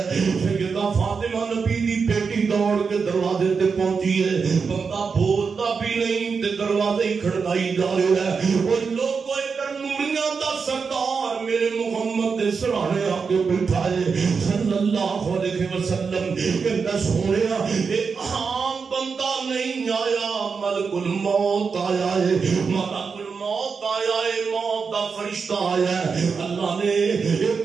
سیدہ فاطمہ نبی دی بیٹی دوڑ کے دروازے تے پہنچی ہے بندہ بولتا بھی نہیں تے دروازے ہی کھڑکائی جا رہا ہے وہ لوگ ادھر نوریاں دا سردار میرے محمد دے سرانے آ کے بیٹھا ہے صلی اللہ علیہ وسلم کہندا سونیا اے عام بندہ نہیں آیا ملک الموت آیا ہے ملک الموت آیا ہے موت دا فرشتہ آیا ہے اللہ نے یہ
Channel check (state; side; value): quieter; left; 5.4 dB